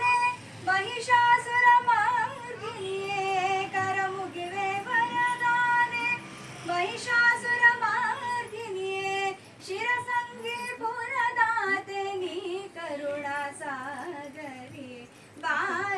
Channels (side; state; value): both; identical; correlation 1.00